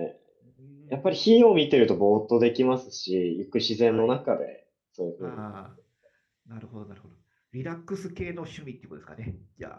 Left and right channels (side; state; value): both; identical; correlation 1.00